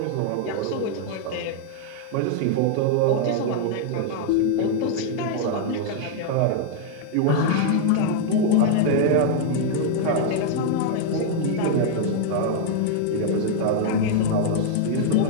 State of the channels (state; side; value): different; both; correlation 0.00